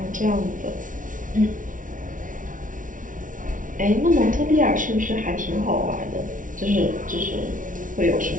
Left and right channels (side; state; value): left; late; 0.38 ms